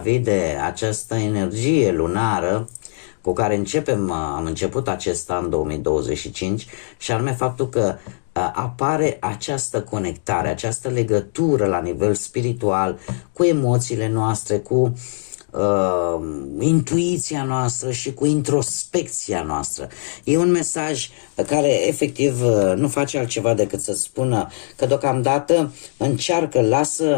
de această energie lunară cu care am început acest an 2025 și anume faptul că apare această conectare, această legătură la nivel spiritual cu emoțiile noastre, cu intuiția noastră și cu introspecția noastră. E un mesaj care efectiv nu face altceva decât să spună că deocamdată încearcă,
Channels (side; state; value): right; silent; digital silence